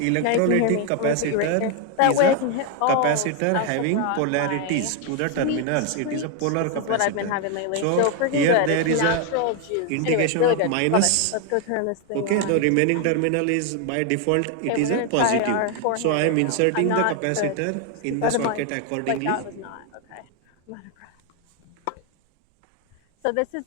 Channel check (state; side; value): different; both; correlation 0.01